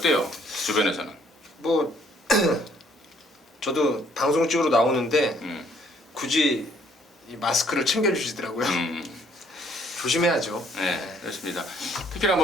주변에서는? 뭐 저도 방송 찍으러 나오는데 굳이 이 마스크를 챙겨주시더라고요. 조심해야죠. 네, 그렇습니다. 특히나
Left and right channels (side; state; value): both; normal; correlation 0.63